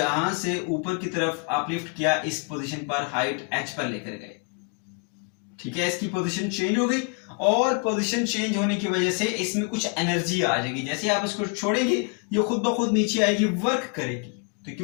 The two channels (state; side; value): quieter; right; 34.4 dB